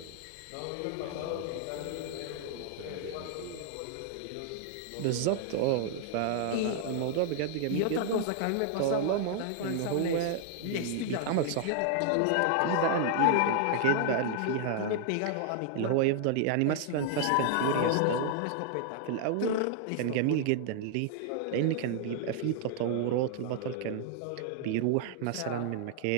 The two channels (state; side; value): different; both; correlation 0.00